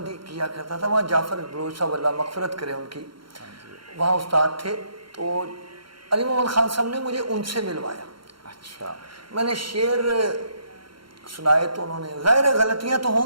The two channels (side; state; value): left; late; 0.73 ms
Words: किया करता था। वहाँ जाफर बलोच साहब, अल्लाह मगफरत करे उनकी, वहाँ उस्ताद थे। तो अली मोहम्मद खान साहब ने मुझे उनसे मिलवाया। अच्छा। मैंने शेर सुनाए तो उन्होंने, ज़ाहिर है गलतियाँ तो